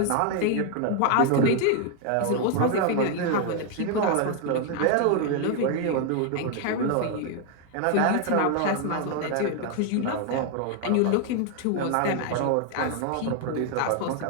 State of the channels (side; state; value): both; different; correlation 0.01